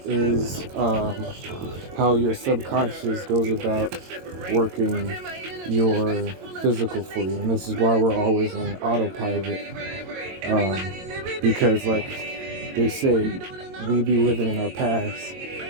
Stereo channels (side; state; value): left; late; 22 ms